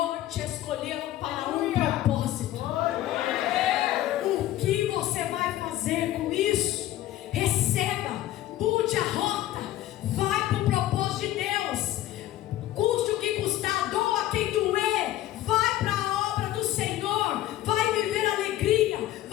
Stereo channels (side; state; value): right; quieter; 14.2 dB